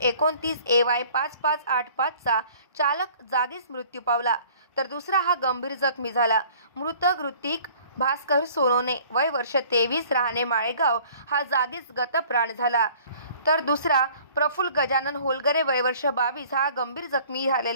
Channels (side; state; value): both; inverted; correlation -0.52